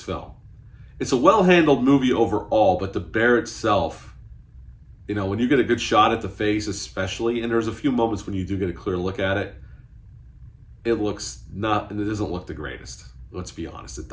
film. It's a well-handled movie overall, but the bear itself, when you get a good shot at the face especially, and there's a few moments when you do get a clear look at it, it doesn't look the greatest. Let's be honest, it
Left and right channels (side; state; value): both; identical; correlation 1.00